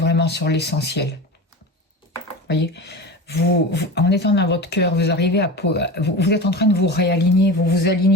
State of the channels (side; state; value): both; normal; correlation 0.29